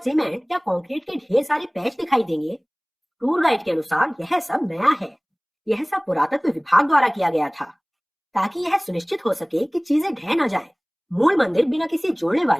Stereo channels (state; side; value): identical; both; correlation 1.00